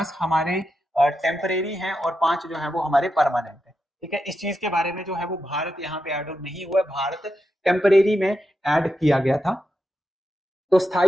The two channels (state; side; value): normal; both; correlation 0.87